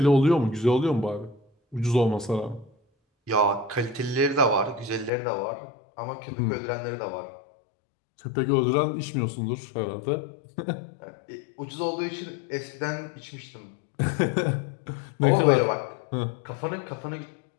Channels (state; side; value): drops out; right; at 5.1 s